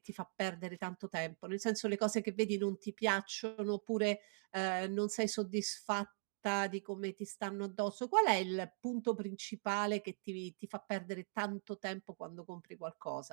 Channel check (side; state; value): left; silent; digital silence